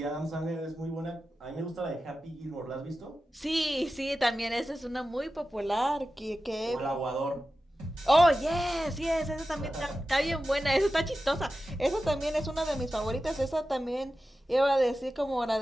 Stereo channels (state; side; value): normal; both; correlation 0.93